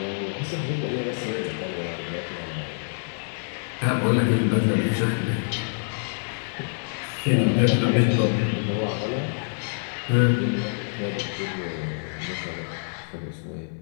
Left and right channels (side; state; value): right; silent; 61 dB below the other